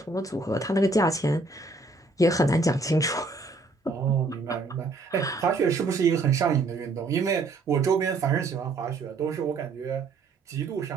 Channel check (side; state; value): left; quieter; 3.5 dB